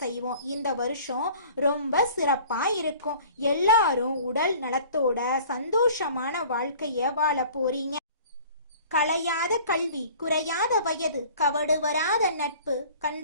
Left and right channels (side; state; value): both; inverted; correlation -0.48